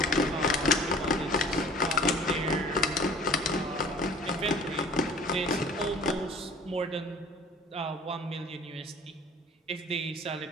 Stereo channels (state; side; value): normal; both; correlation 0.48